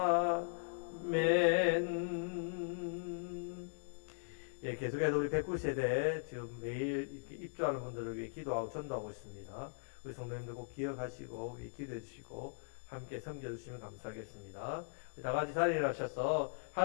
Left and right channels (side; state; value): right; silent; 52 dB below the other